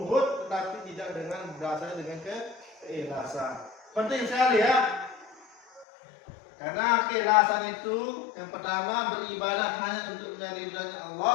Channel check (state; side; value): drops out; right; at 5.9 s